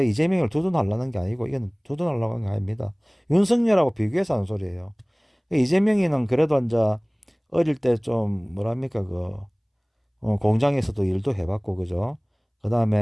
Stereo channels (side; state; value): both; identical; correlation 1.00